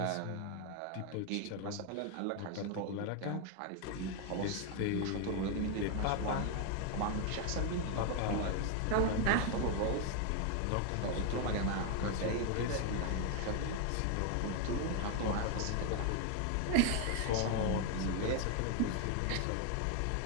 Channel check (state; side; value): different; both; correlation 0.01